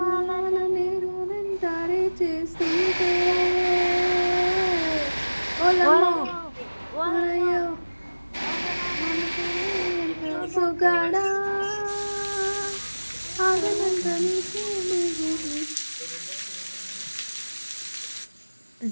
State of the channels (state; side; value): inverted; both; correlation -1.00